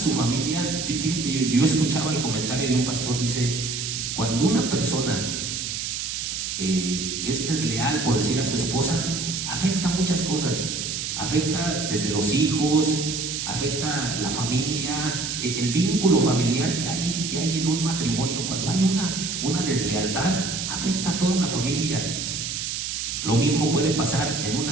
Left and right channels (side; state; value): right; noise; hiss, 3 dB below the sound